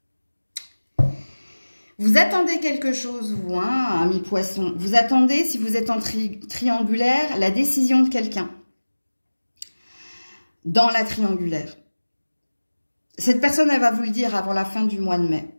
Vous attendez quelque chose, vous, hein, ami poisson. Vous attendez, si vous êtes en triangulaire, la décision de quelqu'un. Dans la triangulaire. Cette personne, elle va vous le dire avant la fin du mois de mai.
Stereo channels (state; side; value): inverted; both; correlation -1.00